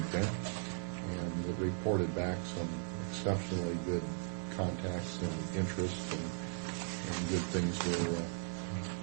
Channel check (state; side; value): silent; left; 53 dB below the other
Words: and it reported back some exceptionally good contacts and interest, and good things were